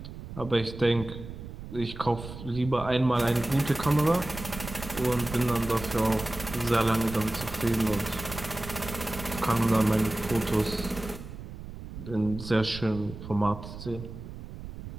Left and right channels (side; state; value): right; noise; rumble, 11 dB below the sound